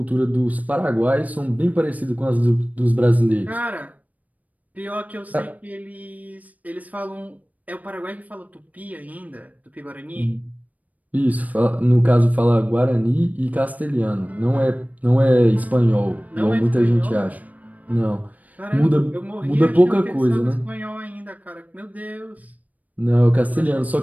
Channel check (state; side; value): late; left; 0.074 ms